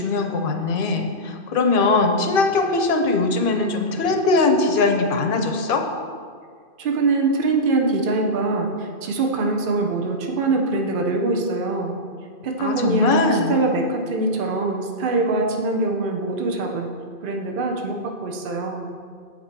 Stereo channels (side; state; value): left; late; 2.5 ms